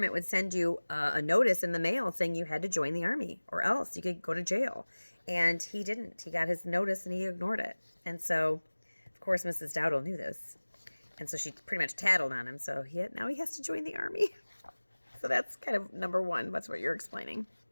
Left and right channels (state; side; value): inverted; both; correlation -1.00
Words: would send you a notice in the mail saying you had to join the Army, or else you could go to jail. And he didn't. He got his notice and he ignored it. And so, of course, Mrs. Dowdle knew this. And so she pretty much tattled on him. So now he has to join the Army. So that's kind of number one. That's what you're explaining.